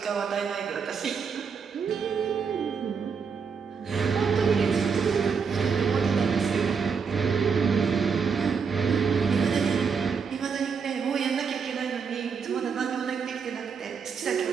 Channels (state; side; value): quieter; left; 6.0 dB